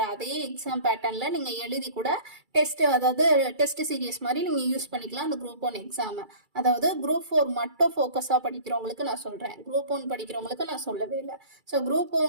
அதே எக்ஸாம் பேட்டர்ன்ல நீங்க எழுதி கூட டெஸ்ட், அதாவது டெஸ்ட் சீரியஸ் மாதிரி நீங்க யூஸ் பண்ணிக்கலாம் அந்த குரூப் 1 எக்ஸாம். அதாவது குரூப் 4 மட்டும் ஃபோக்கஸா படிக்கிறவங்களுக்கு நான் சொல்றேன், குரூப் 1 படிக்கிறவங்களுக்கு நான் சொல்லவே இல்லை. ஸோ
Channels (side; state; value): left; late; 2.3 ms